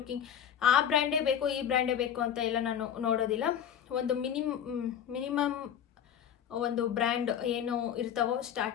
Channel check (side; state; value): right; quieter; 9.1 dB